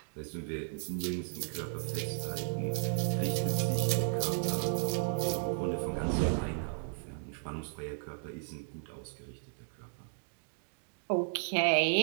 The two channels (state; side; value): silent; left; digital silence